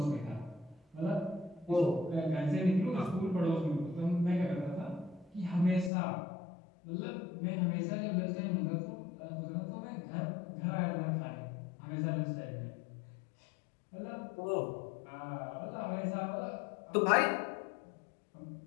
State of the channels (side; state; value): right; drops out; at 5.9 s